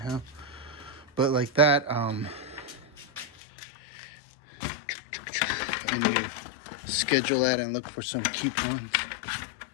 But like that, I need to schedule that and look for some coupons.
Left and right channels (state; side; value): drops out; right; at 3.3 s